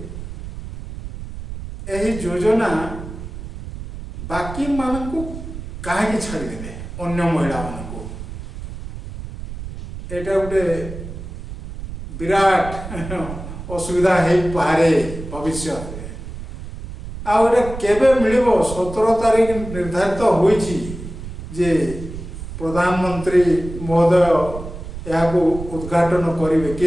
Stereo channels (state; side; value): noise; right; rumble, 10 dB below the sound